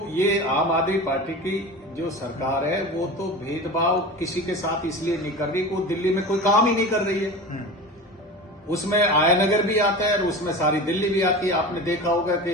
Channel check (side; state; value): both; normal; correlation 0.31